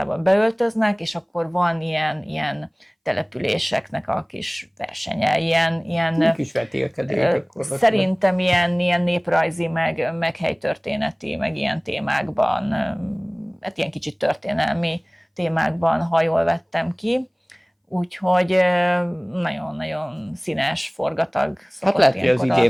beöltöznek, és akkor van ilyen településeknek a kis versenye, ilyen kis vetélkedők. Szerintem ilyen néprajzi, meg helytörténeti, meg ilyen témákban, hát ilyen kicsit történelmi témákban, ha jól vettem ki. Úgyhogy nagyon-nagyon színes, forgatag szokott. Hát lehet, hogy az idén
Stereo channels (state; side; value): identical; both; correlation 1.00